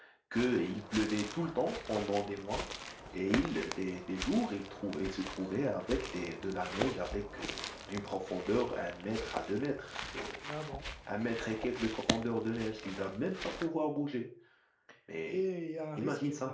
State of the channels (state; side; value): identical; both; correlation 1.00